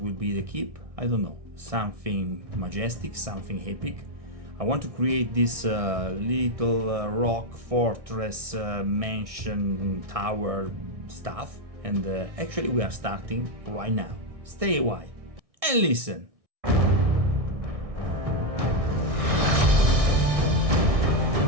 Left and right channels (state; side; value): late; left; 1.6 ms